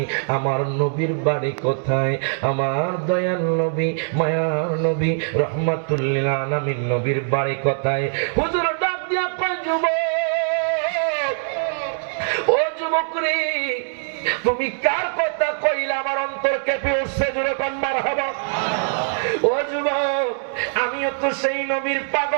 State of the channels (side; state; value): left; silent; digital silence